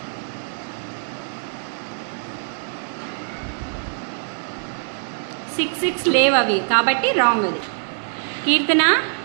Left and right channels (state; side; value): silent; left; digital silence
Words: సిక్స్ లేవు అవి, కాబట్టి రాంగ్ అది. కీర్తన